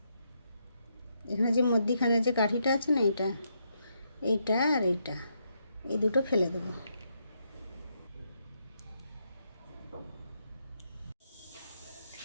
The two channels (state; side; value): inverted; both; correlation -0.79